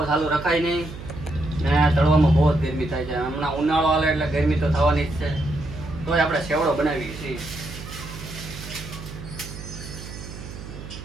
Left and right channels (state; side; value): noise; right; hum, 12 dB below the sound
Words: ચાલુ રખાય નહીં ને તળવામાં બહુ જ ગરમી થાય છે। હમણાં ઉનાળો આવે એટલે ગરમી તો થવાની જ છે, તોય આપણે સેવડો બનાવીએ છીએ।